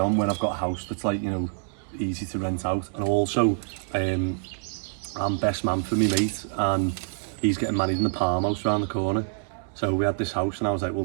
when I've got a house that's like, you know, easy to rent out. And also, I'm best man for me mate, and he's getting married in the Palm House around the corner. So we had this house, and I was like, well,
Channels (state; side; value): silent; left; digital silence